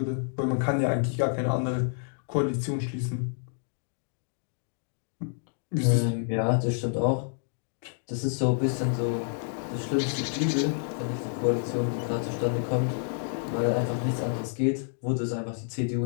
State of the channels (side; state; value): right; silent; digital silence